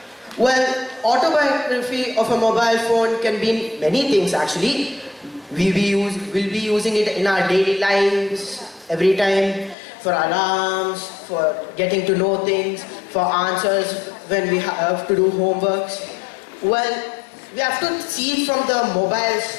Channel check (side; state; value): right; drops out; at 9.8 s